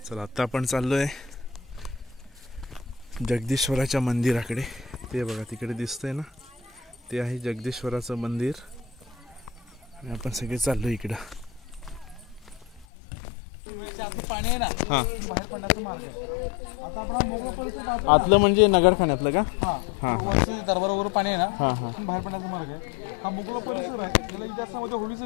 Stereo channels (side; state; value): right; drops out; at 12.9 s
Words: चला आता आपण चाललोय जगदीश्वराच्या मंदिराकडे. ते बघा तिकडे दिसतंय ना, ते आहे जगदीश्वराचं मंदिर आणि आपण सगळे चाललो इकडं. पाणी आहे ना, हा बाहेर पडण्याचा मार्ग आहे. आता आपण मोकळा परिसर आतलं म्हणजे नगरखान्यातलं का? हा दरबारावर पाणी आहे ना, हा हा बाहेर पडण्याचा मार्ग आहे. हा मोकळा परिसर आहे. त्याला इतिहासामध्ये होळीचं